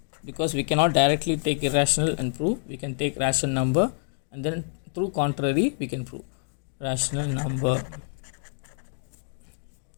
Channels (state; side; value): silent; right; digital silence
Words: because we cannot directly take irrational and prove. We can take rational number and then through contrary we can prove rational number.